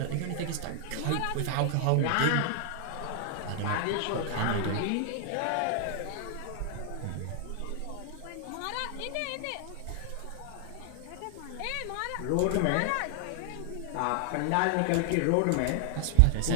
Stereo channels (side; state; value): both; different; correlation 0.00